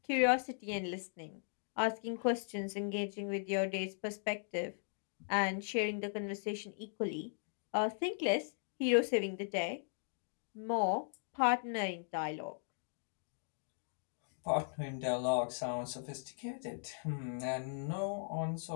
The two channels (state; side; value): silent; right; digital silence